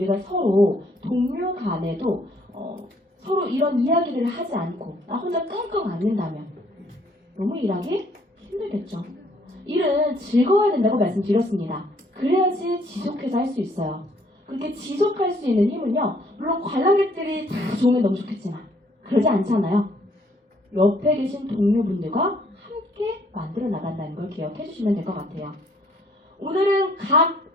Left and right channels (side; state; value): both; normal; correlation 0.64